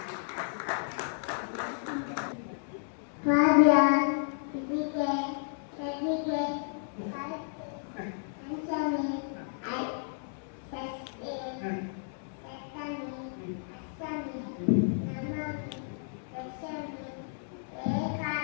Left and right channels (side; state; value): right; silent; 56 dB below the other